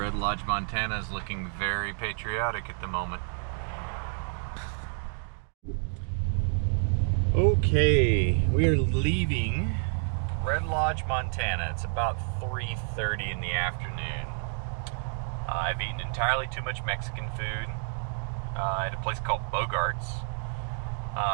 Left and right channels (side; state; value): left; silent; 57 dB below the other